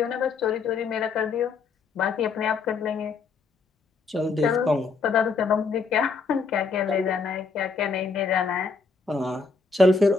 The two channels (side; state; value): right; quieter; 4.6 dB